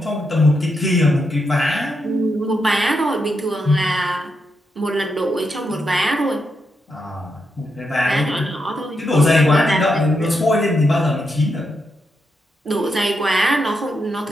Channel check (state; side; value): normal; both; correlation 0.83